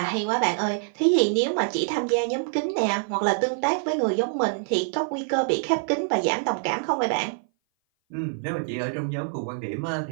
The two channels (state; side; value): silent; left; 58 dB below the other